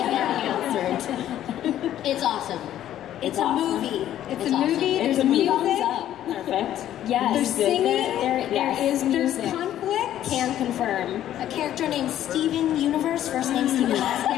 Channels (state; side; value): quieter; right; 11.9 dB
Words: It's awesome. It's a movie. It's a movie. There's a music. Perfect. Yes. There's singing. There is music. There's conflict. Can confirm. A character named Steven Universe, first name Steven, last